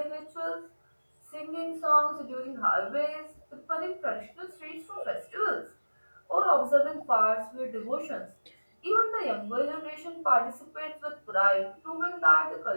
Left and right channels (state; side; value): inverted; both; correlation -1.00